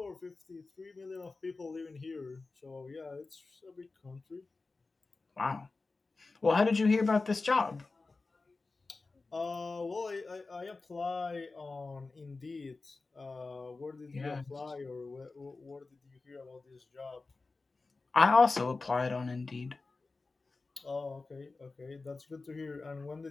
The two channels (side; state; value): right; quieter; 3.7 dB